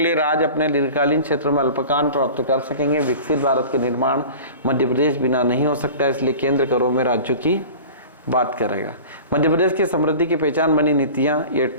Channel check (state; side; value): inverted; both; correlation -0.39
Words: लिए राज्य अपने दीर्घकालीन क्षेत्रों में अल्पकान प्राप्त कर सकेंगे। विकसित भारत के निर्माण मध्य प्रदेश बिना नहीं हो सकता, इसलिए केंद्र करों में राज्यों की बात करेगा। मध्य प्रदेश की समृद्धि की पहचान बनी नीतियाँ, ये